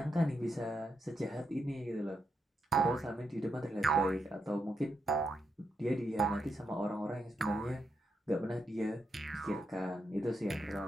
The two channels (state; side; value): normal; both; correlation 0.82